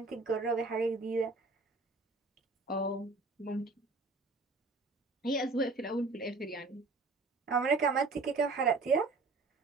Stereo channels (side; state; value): left; quieter; 3.6 dB